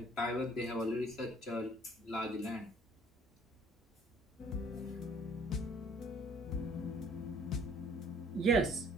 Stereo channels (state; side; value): normal; both; correlation 0.56